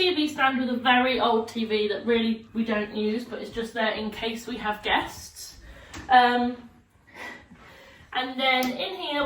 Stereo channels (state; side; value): identical; both; correlation 1.00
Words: stand with a very old TV that really we don't use, but it's just there in case we have guests. And then in here